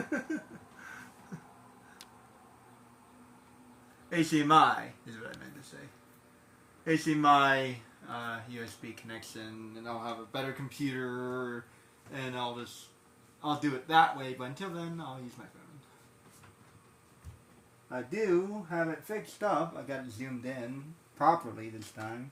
HDMI is what I meant to say. HDMI USB connection, and I'll have a better computer, and I'll do it that way. But until then, I'll use my phone. I do have it fixed up. I got it zoomed in properly this time.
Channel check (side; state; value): both; identical; correlation 1.00